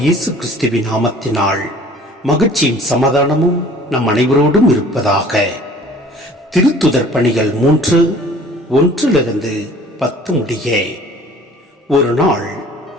இயேசு கிறிஸ்துவின் நாமத்தினால் மகிழ்ச்சியும் சமாதானமும் நம் அனைவரோடும் இருப்பதாக. திருத்துதர் பணிகள் 3:1-10 முடிய. ஒரு நாள்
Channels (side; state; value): both; normal; correlation 0.50